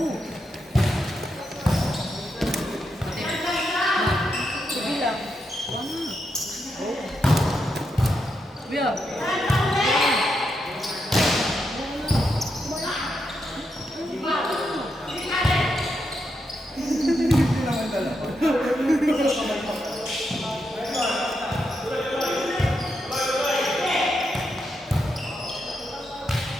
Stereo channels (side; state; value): both; normal; correlation 0.83